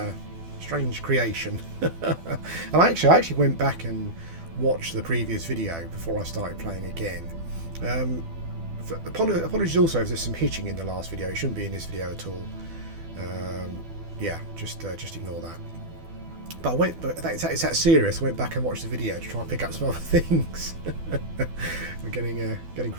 creation. And I actually went back and watched the previous video before I started playing again. Apologies also if there's some hitching in the last video. It shouldn't be in this video at all. Yeah, just ignore that. But it's that serious. I went back and watched the video to try and pick up some other things. We're getting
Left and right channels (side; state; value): left; late; 12 ms